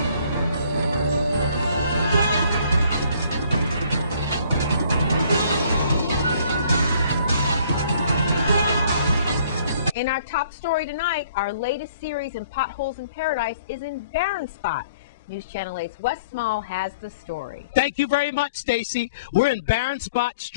In our top story tonight, our latest series in Potholes in Paradise is in Barren Spot. News Channel 8's Wes Small has the story. Thank you very much, Stacy. We're in Barren Spot,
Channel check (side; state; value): both; inverted; correlation -0.58